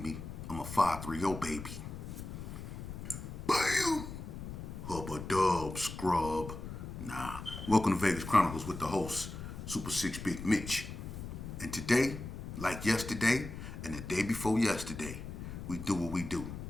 me? I'm a 530 baby. Bam! Hubba dub, scrub. Nah. Welcome to Vegas Chronicles with the host, Super 6 Big Mitch. And today, like yesterday and the day before yesterday, we do what we do.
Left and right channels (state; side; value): noise; left; rumble, 9 dB below the sound